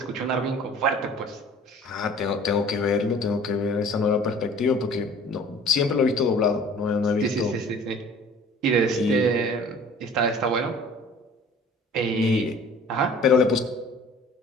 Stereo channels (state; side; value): normal; both; correlation 0.49